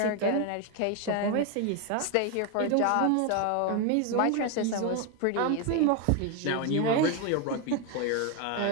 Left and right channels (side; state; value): both; different; correlation 0.01